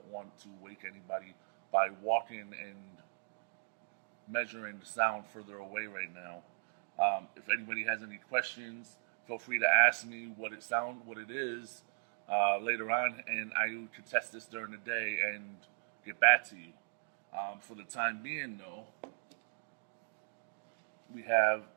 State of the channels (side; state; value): left; silent; digital silence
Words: want to wake anybody by walking and measuring the sound further away right now. If anybody has any questions, feel free to ask me what it is later on, and I can test this during the day and get back to you. For the time being, though, we have